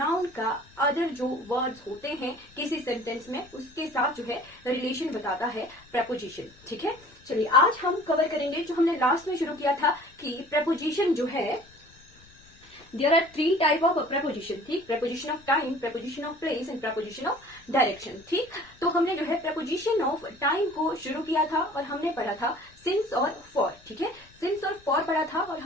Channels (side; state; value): left; noise; rumble, 27 dB below the sound